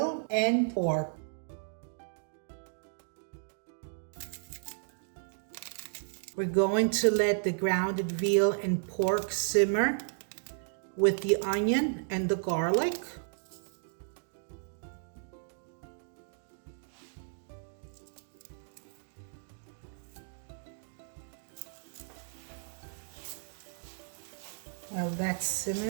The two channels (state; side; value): silent; left; digital silence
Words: and pork. We're going to let the grounded veal and pork simmer with the onion and the garlic. While that's